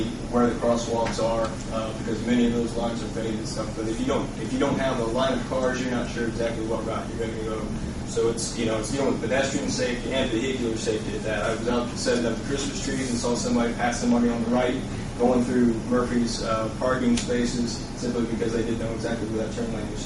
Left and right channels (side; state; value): both; identical; correlation 1.00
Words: where the crosswalks are, because many of those lines are faded and stuff. But if you don't have a line of cars, you're not sure exactly what route you're going to go. So it's dealing with pedestrian safety and vehicular safety at that. I was out setting up Christmas trees and saw somebody pass somebody on the right going through Murphy's parking spaces simply because they didn't know exactly where that turn lane was